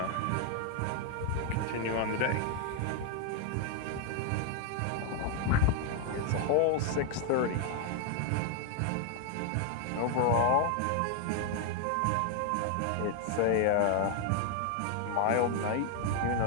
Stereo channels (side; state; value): both; different; correlation 0.00